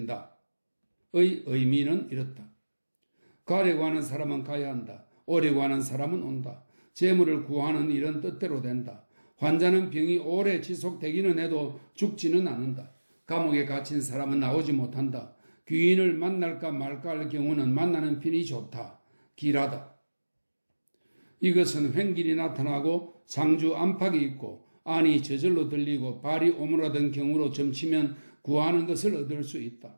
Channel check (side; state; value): both; inverted; correlation -1.00